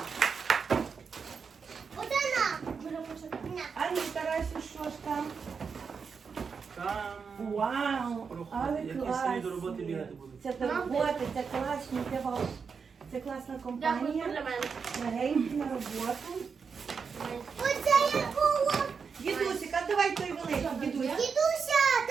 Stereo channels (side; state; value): left; quieter; 5.7 dB